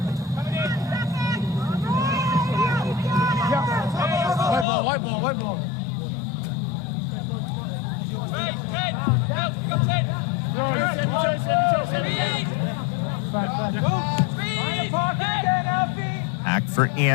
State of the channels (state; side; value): drops out; right; at 4.7 s